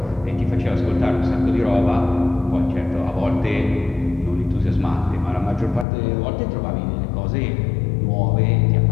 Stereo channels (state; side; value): drops out; right; at 5.9 s